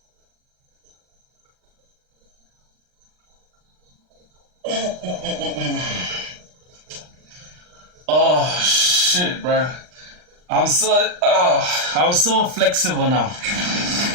Oh shit, bro. I'm so flexible now.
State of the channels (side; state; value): left; late; 39 ms